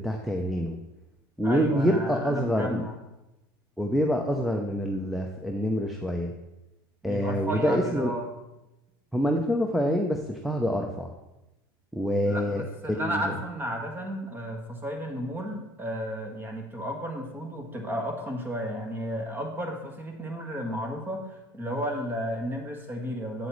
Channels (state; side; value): normal; both; correlation 0.69